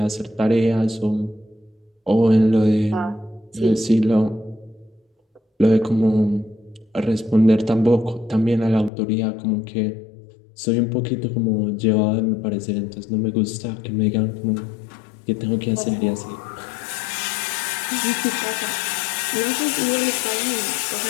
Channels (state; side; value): drops out; right; at 8.9 s